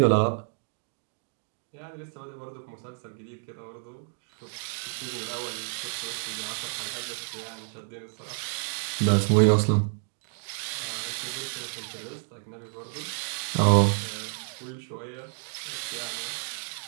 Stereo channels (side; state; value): left; silent; 58 dB below the other